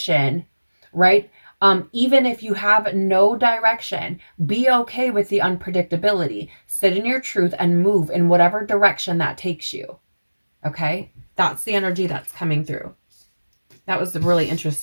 right? Even if you have no direction, be okay with the unpredictability. Sit in your truth and move in whatever direction that takes you. Okay? That's the energy that's coming through. That was really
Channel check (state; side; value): inverted; both; correlation -1.00